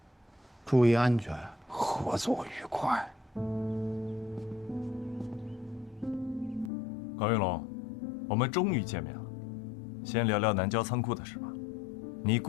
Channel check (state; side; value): drops out; right; at 6.7 s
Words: 注意安全，合作愉快。高云龙，我们终于见面了。先聊聊南郊仓库的事吧。你